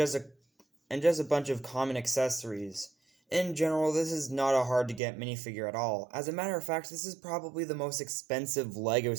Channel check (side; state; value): left; drops out; at 5.0 s